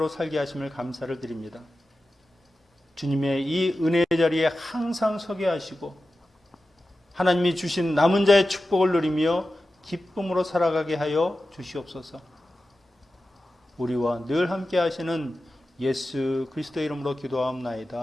살게 하심을 감사를 드립니다. 주님의 이 은혜의 자리에 항상 서게 하시고 하나님이 주신 남은 자의 축복을 누리며 기쁨으로 살아가게 하여 주시옵소서. 우리와 늘 함께 하시는 예수 그리스도의 이름으로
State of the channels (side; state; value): both; normal; correlation 0.93